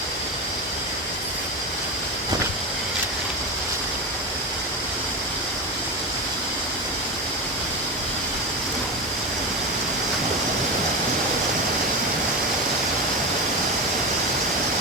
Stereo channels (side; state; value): both; normal; correlation 0.21